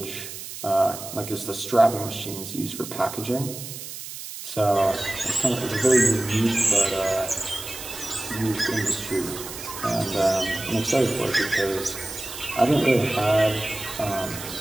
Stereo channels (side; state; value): right; noise; hiss, 10 dB below the sound